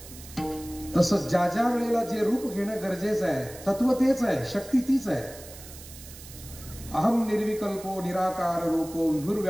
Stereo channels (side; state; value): right; noise; hiss, 16 dB below the sound